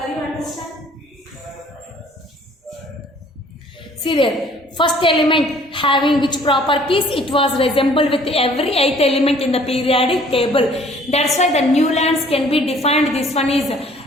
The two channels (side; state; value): both; normal; correlation 0.56